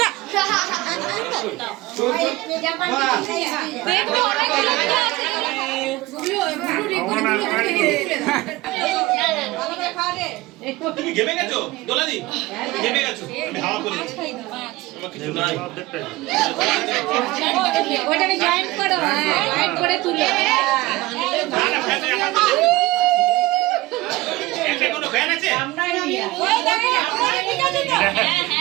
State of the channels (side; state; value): left; quieter; 19.4 dB